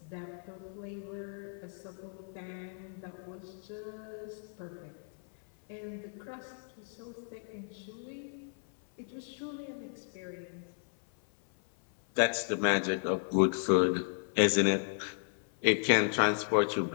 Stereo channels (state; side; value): silent; right; 55 dB below the other